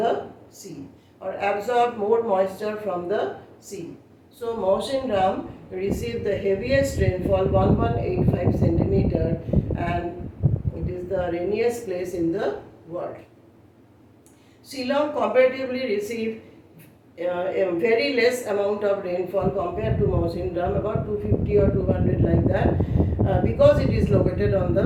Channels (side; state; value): both; identical; correlation 1.00